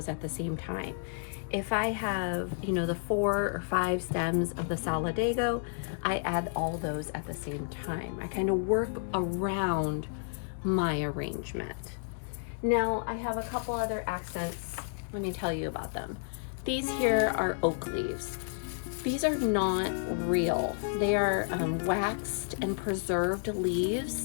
at the same time. If I have, the 4 or 5 stems of the Solidago, I add all those at the same time. I kind of work around my arrangement. Now I have a couple other accents. Let me tell you about them. These here are oak leaves. These are not real. They are waxed and preserved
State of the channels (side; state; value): right; silent; digital silence